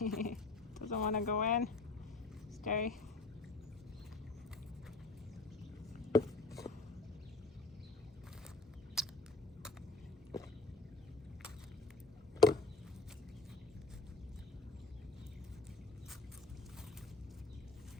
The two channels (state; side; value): quieter; right; 3.5 dB